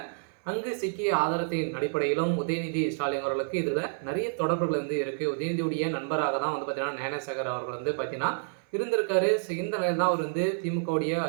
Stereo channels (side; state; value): left; silent; 56 dB below the other